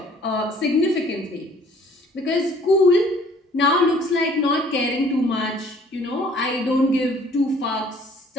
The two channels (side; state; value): both; normal; correlation 0.57